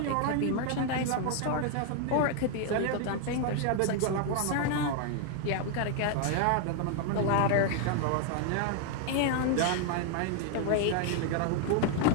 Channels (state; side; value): different; both; correlation 0.00